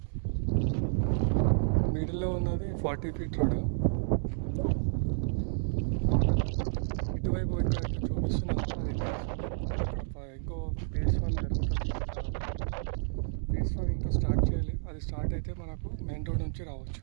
మిడిల్లో ఉన్నది 40 feet రోడ్. ఇటువైపు చూపిస్తున్నాను. ఇంకో ఫేజ్ 1 జరుగుతుంది. ఫేజ్ 1 ఇంకా స్టార్ట్ చేయాలి. అది స్టార్ట్ అయితే మనకు మెయిన్ రోడ్ నుంచి రావచ్చు.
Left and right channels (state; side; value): silent; left; digital silence